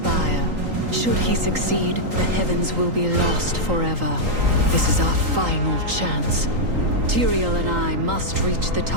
Should he succeed, the heavens will be lost forever. This is our final chance. Tyrael and I must reach the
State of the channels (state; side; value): late; left; 3.8 ms